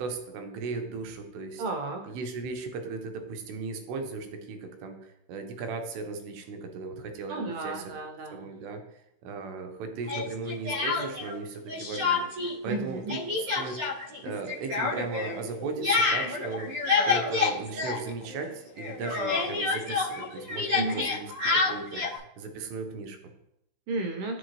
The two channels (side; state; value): left; late; 16 ms